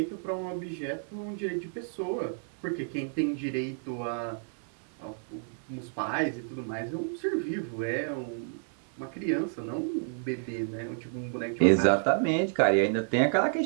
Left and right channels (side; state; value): left; silent; 58 dB below the other